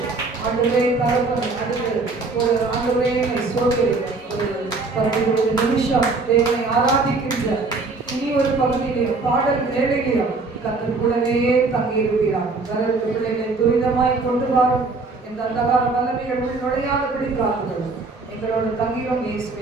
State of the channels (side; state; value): left; quieter; 3.7 dB